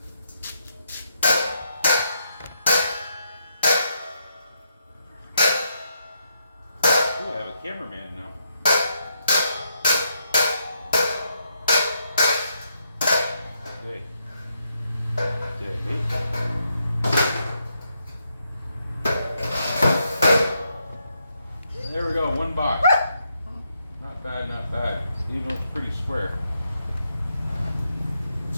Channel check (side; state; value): both; inverted; correlation -0.79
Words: Oh, I have a cameraman now. Hey. There we go, 1 box. Not bad, not bad. Even looks pretty square.